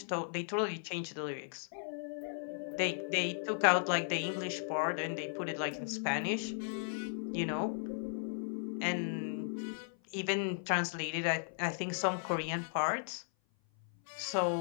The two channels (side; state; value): right; silent; 54 dB below the other